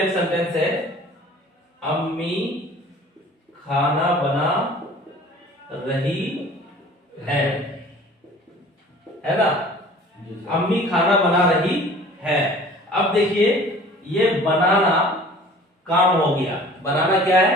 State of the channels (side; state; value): both; normal; correlation 0.47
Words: सेंटेंस है, अम्मी खाना बना रही है ना। अम्मी खाना बना रही है। अब देखिए ये बनाना काम हो गया, बनाना क्या है,